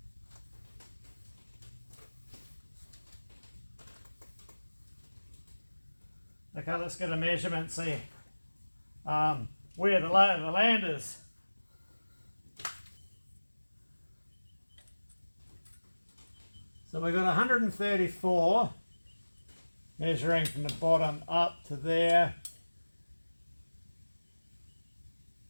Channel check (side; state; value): both; inverted; correlation -1.00